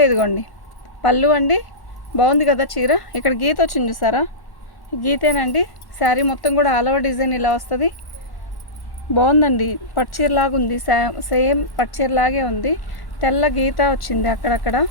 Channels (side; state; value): right; late; 1.1 ms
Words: ఇదిగోండి పళ్ళు అండి, బాగుంది కదా చీర. ఇక్కడ గీత వచ్చింది చూసారా, గీతేనండి. శారీ మొత్తం కూడా ఆల్ ఓవర్ డిజైన్ ఇలా వస్తుంది. బాగుందండి, పట్టుచీరలాగా ఉంది. సేమ్ పట్టుచీరలాగే ఉంది. తెల్ల గీత వచ్చింది అక్కడక్కడ,